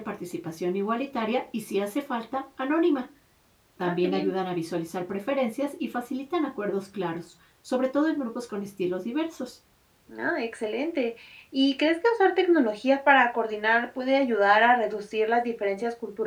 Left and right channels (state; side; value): identical; both; correlation 1.00